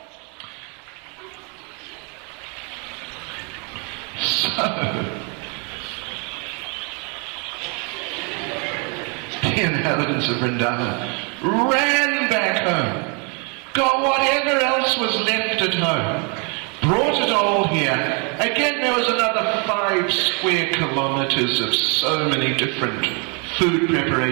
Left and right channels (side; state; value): left; quieter; 34.9 dB